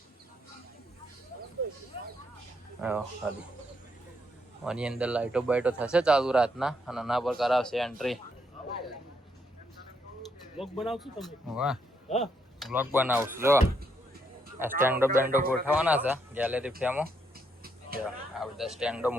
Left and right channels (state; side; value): normal; both; correlation 0.76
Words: ખાલી આની અંદર લાઈટો બાઈટો થશે ચાલુ રાતના, અને આના પર કરાવશે એન્ટ્રી. બ્લોગ બનાવશું તમે? વાહ હા બ્લોગ બનાવશું. જો આ સ્ટેન્ડો બેન્ડો ગોઠવવાના છે ગેલેરી ફેમો. જો આ બધા સ્ટેન્ડો